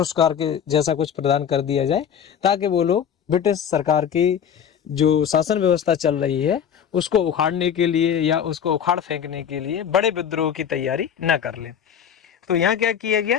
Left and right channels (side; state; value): right; quieter; 8.3 dB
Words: के जैसा कुछ प्रदान कर दिया जाए ताकि वो लोग ब्रिटिश सरकार की जो शासन व्यवस्था चल रही है उसको उखाड़ने के लिए या उसको उखाड़ फेंकने के लिए बड़े विद्रोह की तैयारी न कर ले। तो यहाँ क्या किया